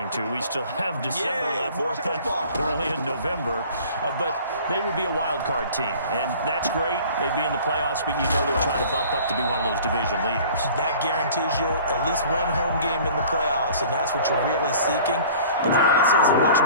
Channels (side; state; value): both; inverted; correlation -0.48